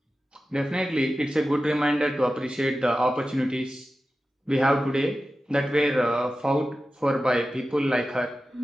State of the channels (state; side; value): normal; both; correlation 0.94